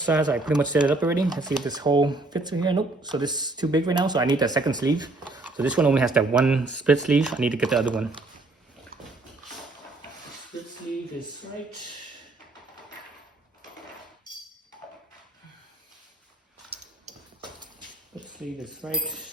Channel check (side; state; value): left; quieter; 3.0 dB